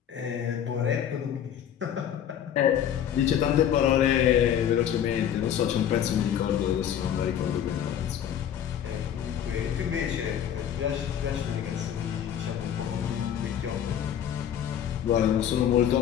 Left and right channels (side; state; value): right; quieter; 9.6 dB